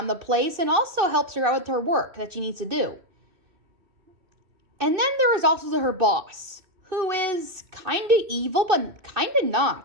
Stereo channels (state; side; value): late; left; 2.6 ms